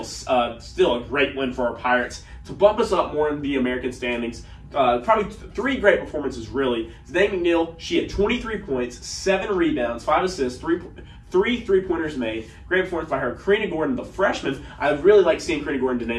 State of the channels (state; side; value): identical; both; correlation 1.00